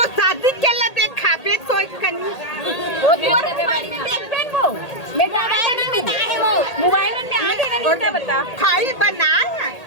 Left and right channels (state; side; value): late; right; 1.8 ms